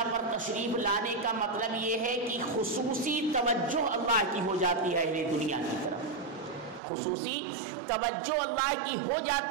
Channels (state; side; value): drops out; left; at 6.8 s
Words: پر تشریف لانے کا مطلب یہ ہے کہ خصوصی توجہ اللہ کی ہو جاتی ہے اہل دنیا کی طرف، خصوصی توجہ اللہ کی ہو